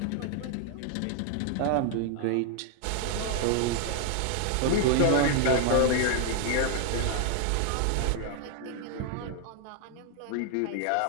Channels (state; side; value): different; both; correlation 0.00